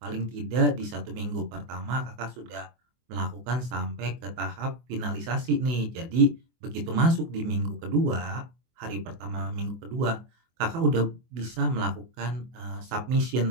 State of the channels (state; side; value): late; left; 24 ms